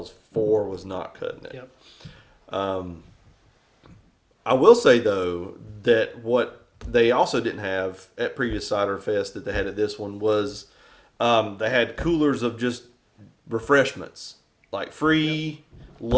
4 was not cutting it. Yep. I will say though that what they also didn't have at previous CiderFest that they had at this one was they had coolers of just refreshments, like free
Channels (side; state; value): both; identical; correlation 1.00